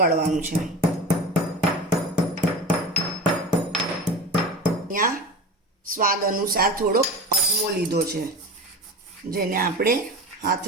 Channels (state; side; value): normal; both; correlation 0.32